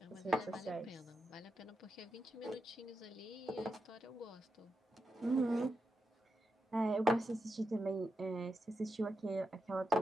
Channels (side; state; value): both; normal; correlation 0.86